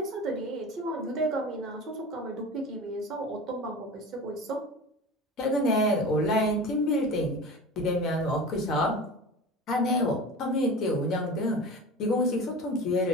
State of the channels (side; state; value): both; normal; correlation 0.33